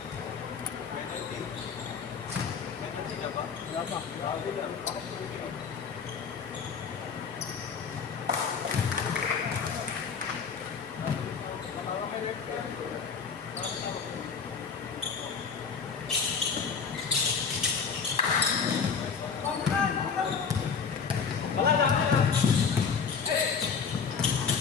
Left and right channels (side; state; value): right; quieter; 6.1 dB